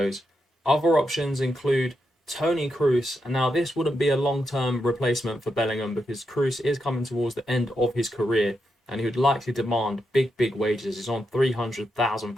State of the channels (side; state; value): both; normal; correlation 0.84